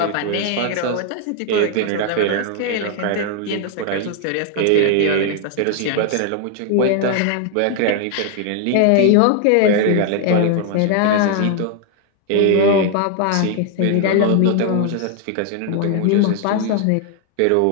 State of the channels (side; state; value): both; different; correlation 0.00